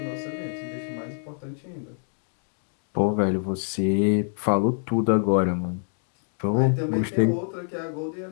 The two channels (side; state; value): right; silent; digital silence